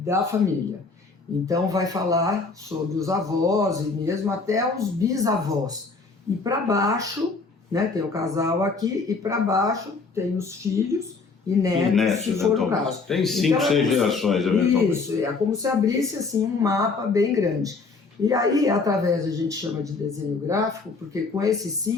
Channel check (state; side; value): quieter; right; 4.2 dB